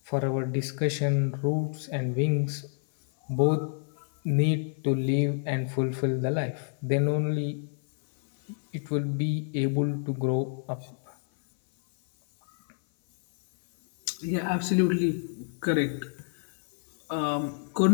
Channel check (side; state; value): right; silent; 56 dB below the other